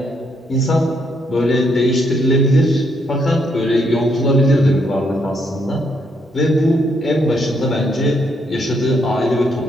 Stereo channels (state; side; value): normal; both; correlation 0.74